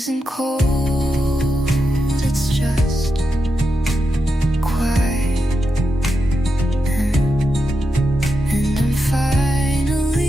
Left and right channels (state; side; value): normal; both; correlation 0.87